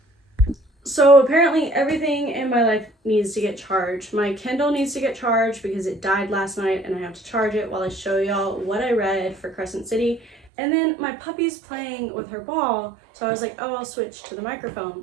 So apparently everything in my life needs to get charged. My Kindle needs to get charged because it died last night and I have to charge it while I show y'all what I read for Crescent City. And then my puppy's playing with her ball, so I was like, oh, I'll switch to the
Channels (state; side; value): drops out; left; at 10.5 s